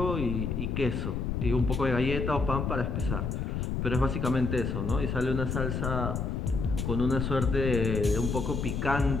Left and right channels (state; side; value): noise; left; rumble, 1 dB below the sound